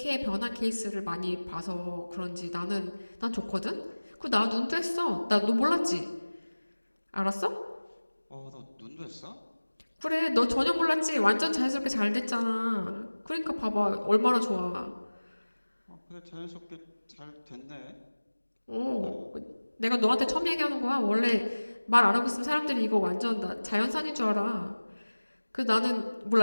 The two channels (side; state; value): both; inverted; correlation -1.00